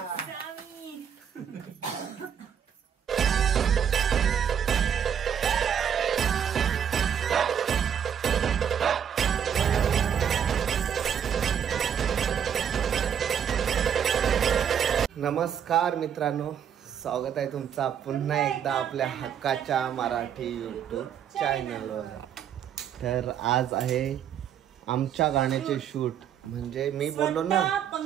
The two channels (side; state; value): left; quieter; 8.5 dB